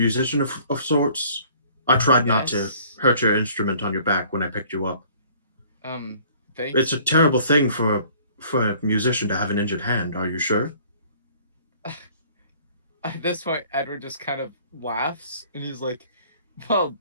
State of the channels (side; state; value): both; inverted; correlation -0.54